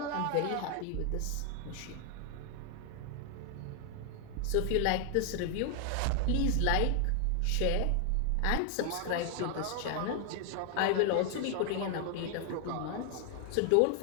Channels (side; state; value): both; different; correlation 0.00